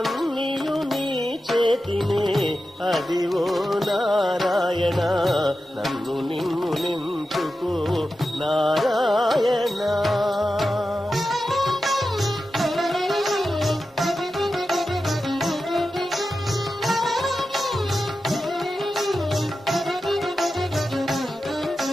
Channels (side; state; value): both; normal; correlation 0.92